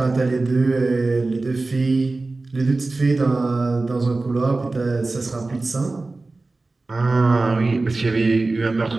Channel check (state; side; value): quieter; left; 3.4 dB